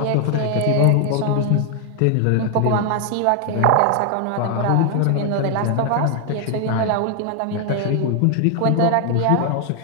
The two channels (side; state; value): both; different; correlation 0.00